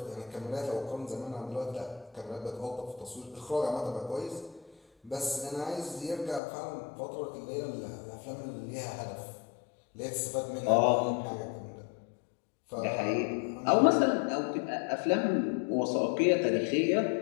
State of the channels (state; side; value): drops out; right; at 6.4 s